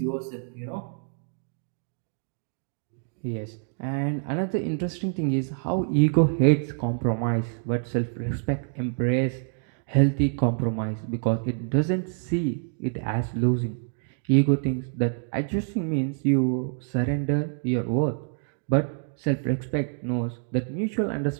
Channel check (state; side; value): silent; left; 60 dB below the other